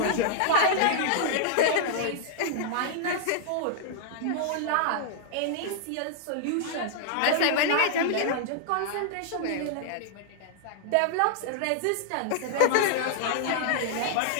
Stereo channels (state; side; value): different; both; correlation -0.01